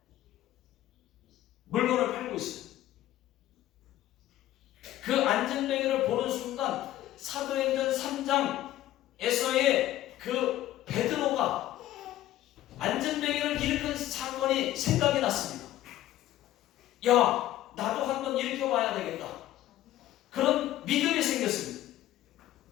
물건을 팔고 있어요. 그 안전뱅이를 보는 순간 사도행전 3장에서의 그 베드로가 안전뱅이를 일으킨 사건이 생각이 났습니다. 야, 나도 한번 일으켜봐야 되겠다. 그런 믿음이 생겼습니다.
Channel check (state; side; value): quieter; right; 14.0 dB